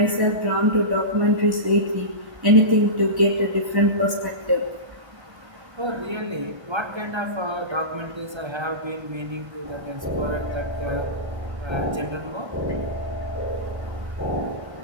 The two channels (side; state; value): left; late; 1.3 ms